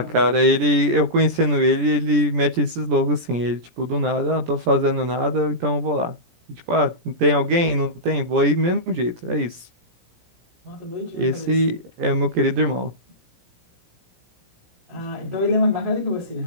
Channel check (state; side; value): late; left; 17 ms